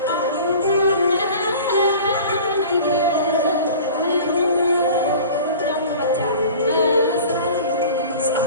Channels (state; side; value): inverted; both; correlation -0.41